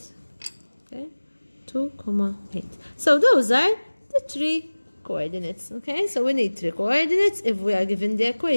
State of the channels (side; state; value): both; inverted; correlation -1.00